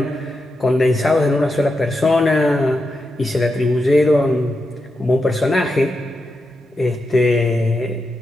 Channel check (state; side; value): normal; both; correlation 0.87